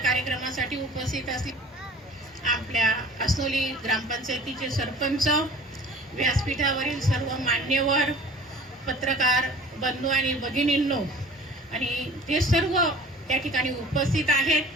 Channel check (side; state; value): both; normal; correlation 0.46